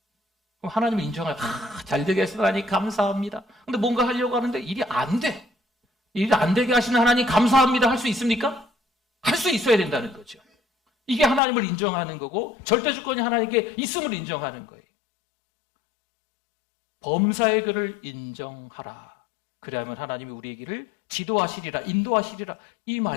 그럼 하나님을 인정하라. 잘 되게 하시다니 감사합니다. 근데 뭔가 하려고 하는데 일이 안 돼. 일이 안 되게 하시는 하나님 감사합니다. 할 수 있습니까? 할 수 있어야 된다는 거죠. 이게 하나님을 인정하는 거고 절대 주권이 하나님께 있음을 인정하는 거예요. 범사의 그를 인정하라. 그래야만 하나님이 우리의 길을 지도하시리라, 인도하시리라. 이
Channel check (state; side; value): drops out; right; at 11.4 s